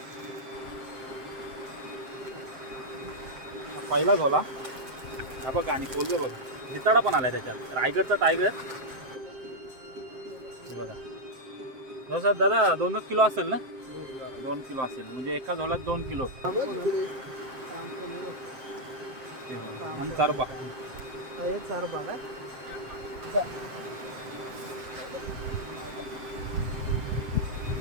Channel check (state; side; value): late; left; 7.6 ms